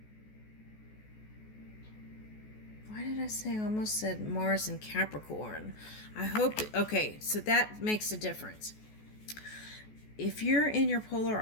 why did I say, I almost said Mars in Capricorn. I hope, okay, so that makes a difference. If you're in your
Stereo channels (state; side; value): late; right; 14 ms